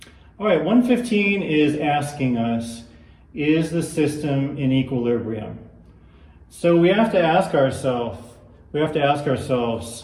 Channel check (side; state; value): both; identical; correlation 1.00